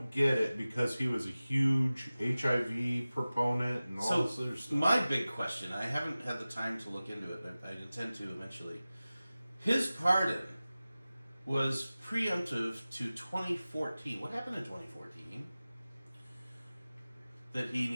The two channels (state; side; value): inverted; both; correlation -0.97